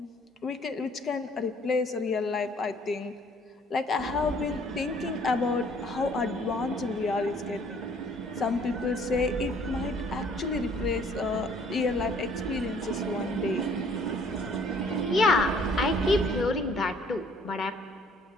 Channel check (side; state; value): both; normal; correlation 0.59